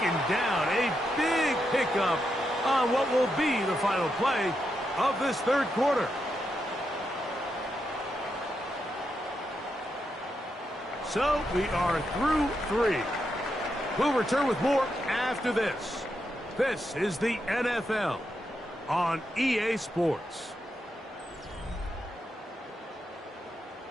down. A big pickup on what will be the final play of this third quarter. So we are through 3. We'll return with more after this. This is the NFL on EA Sports.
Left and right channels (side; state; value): both; normal; correlation 0.84